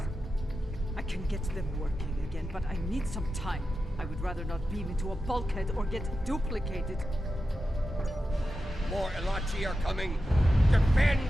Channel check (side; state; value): both; normal; correlation 0.91